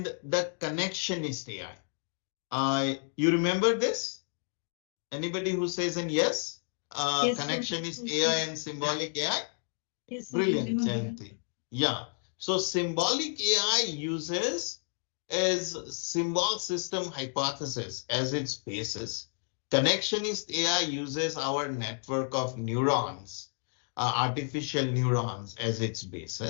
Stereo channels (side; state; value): right; silent; 57 dB below the other